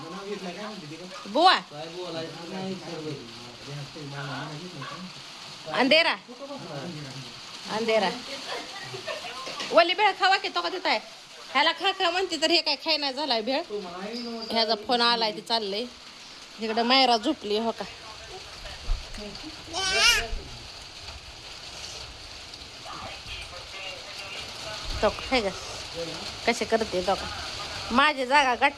बुवा काय बोलायचं नाही अंधेरा अंधेरा वली भेळ खावा की तो का तिथं आहे ह्याला खा खा म्हणते तर हे काय खाय नाही झालाय भेळ ह्याचा फोन आलाय ते चाललंय इकडं मायरा झोपली हो का तो आहे का कसे करते तो का माझी जागा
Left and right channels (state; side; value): identical; both; correlation 1.00